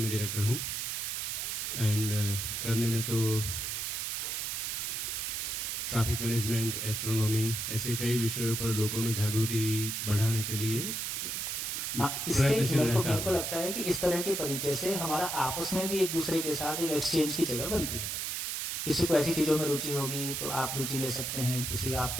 डायरेक्टर हूँ एंड करने में तो ट्रैफिक मैनेजमेंट, एस्ट्रोनॉमी, ऐसे कई विषयों पर लोगों में जागृति बढ़ाने के लिए इससे मेरे को लगता है कि इस तरह के परिचय से हमारा आपस में भी एक दूसरे के साथ एक एक्सचेंज की जगह बनती है। किसी को ऐसी चीजों में रुचि होगी तो आप रुचि ले सकते हैं, किसी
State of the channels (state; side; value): noise; right; hiss, 2 dB below the sound